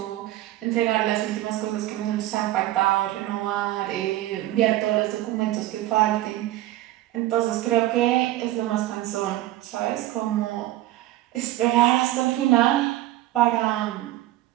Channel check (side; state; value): left; quieter; 15.4 dB